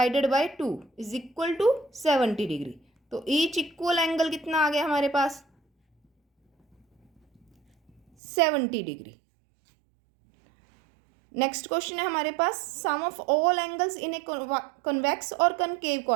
by 2 is equal to 70 degree. तो ईच इक्वल एंगल कितना आ गया हमारे पास? 70 डिग्री। नेक्स्ट क्वेश्चन है हमारे पास, sum of all angles in a convex और कनकेव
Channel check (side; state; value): left; drops out; at 8.0 s